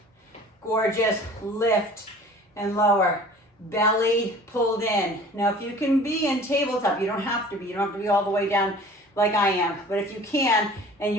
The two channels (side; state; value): both; normal; correlation 0.45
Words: Gorgeous. Lift and lower. Belly pulled in. Now, if you can be in tabletop, you don't have to be. You don't have to be all the way down like I am. But if you can, and